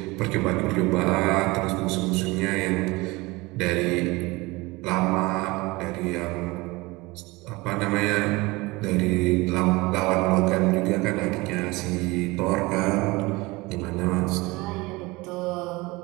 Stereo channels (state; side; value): quieter; left; 22.9 dB